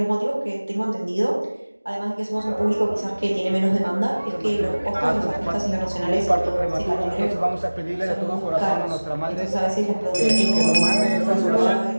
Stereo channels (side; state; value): both; inverted; correlation -1.00